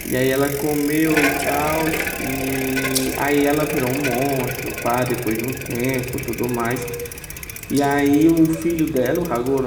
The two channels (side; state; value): both; identical; correlation 1.00